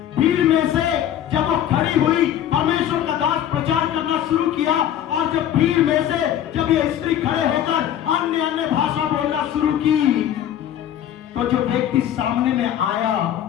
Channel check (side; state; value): right; quieter; 10.7 dB